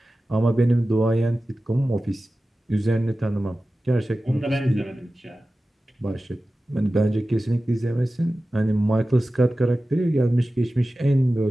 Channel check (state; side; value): normal; both; correlation 0.95